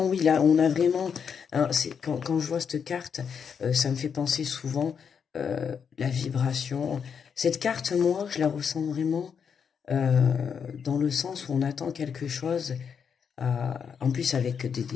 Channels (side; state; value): right; quieter; 6.9 dB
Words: oui, là, on a vraiment... Hein, quand je vois cette carte, ça me fait penser souvent la vibration. Cette carte, moi, je la ressens vraiment dans le sens où on attend quelque chose. En plus, avec